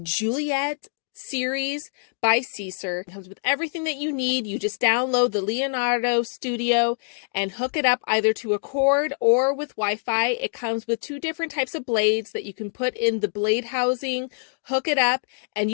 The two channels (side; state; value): right; silent; 62 dB below the other